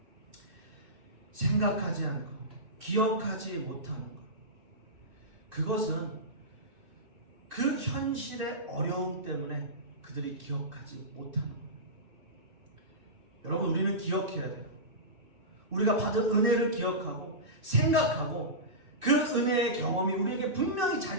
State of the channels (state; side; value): late; left; 2.6 ms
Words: 생각하지 않고 기억하지 못하는 것. 그것은 그 현실의 어려움 때문에 그들이 기억하지 못하는 거예요. 여러분, 우리는 기억해야 돼요. 우리가 받은 은혜를 기억하고 생각하고 그 은혜의 경험이 우리에게 분명히